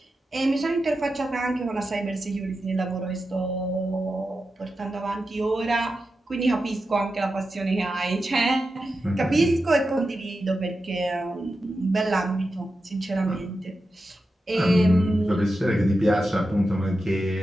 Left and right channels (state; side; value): normal; both; correlation 0.90